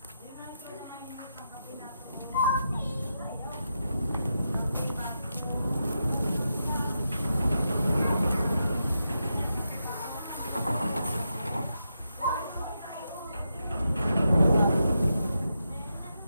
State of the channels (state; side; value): inverted; both; correlation -0.85